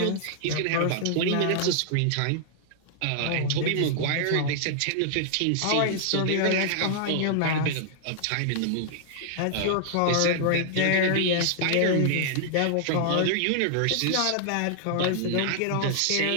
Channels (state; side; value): different; both; correlation -0.01